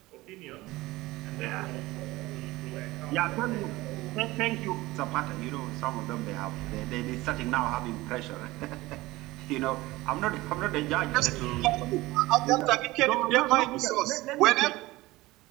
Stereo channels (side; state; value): left; quieter; 19.4 dB